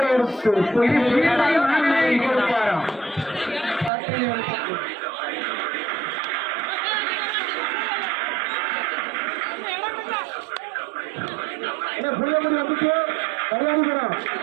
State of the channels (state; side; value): drops out; left; at 3.9 s